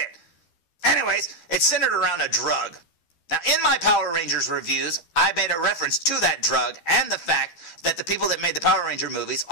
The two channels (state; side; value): late; right; 12 ms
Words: Anyways, it's centered around a drug. Now, in my Power Rangers reviews, I made a reference to that drug and the fact that the people that made the Power Ranger movies